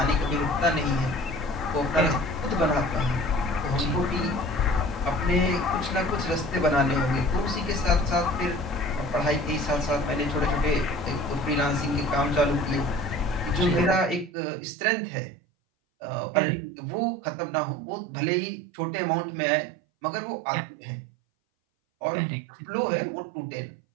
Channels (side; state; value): left; drops out; at 14.3 s